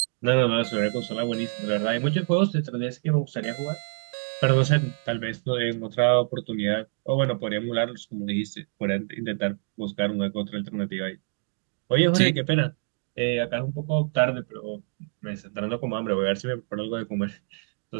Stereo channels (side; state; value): left; silent; 61 dB below the other